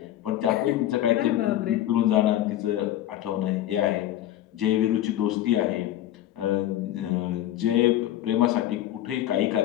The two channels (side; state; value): right; quieter; 13.1 dB